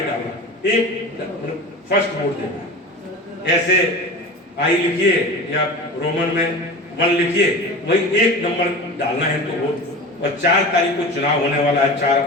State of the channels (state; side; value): normal; both; correlation 0.32